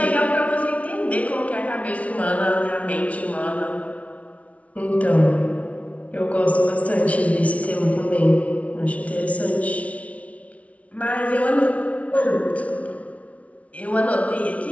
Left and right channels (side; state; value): right; late; 0.066 ms